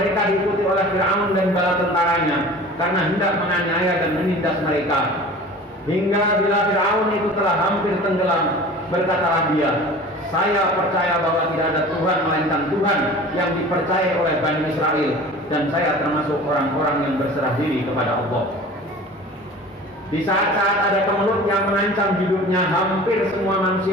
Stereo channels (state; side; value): normal; both; correlation 0.41